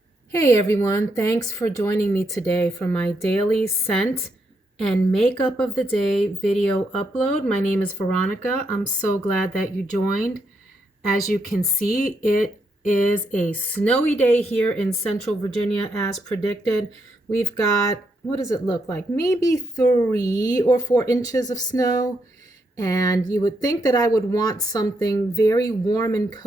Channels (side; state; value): both; normal; correlation 0.79